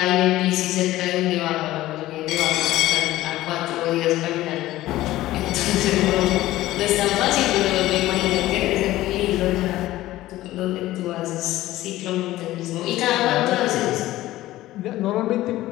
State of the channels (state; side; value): quieter; right; 15.9 dB